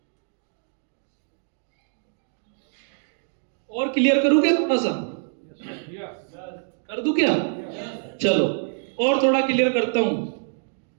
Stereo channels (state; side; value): silent; left; digital silence